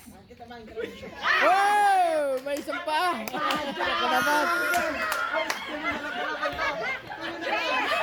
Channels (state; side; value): identical; both; correlation 1.00